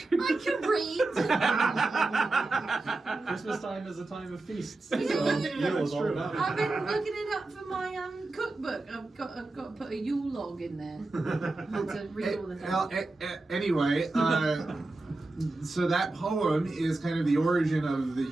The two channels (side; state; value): left; quieter; 3.1 dB